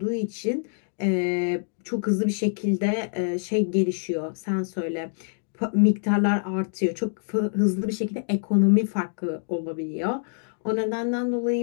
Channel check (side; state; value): right; silent; digital silence